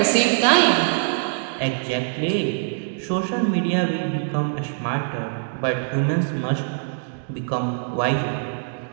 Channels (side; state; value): left; silent; digital silence